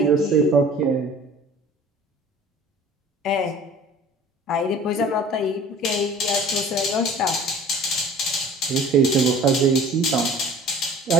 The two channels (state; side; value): normal; both; correlation 0.46